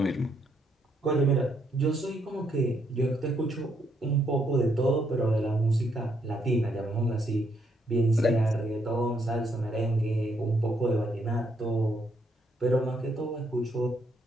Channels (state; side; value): normal; both; correlation 0.74